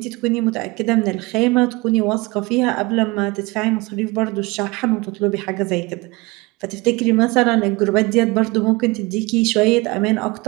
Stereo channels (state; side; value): quieter; left; 23.8 dB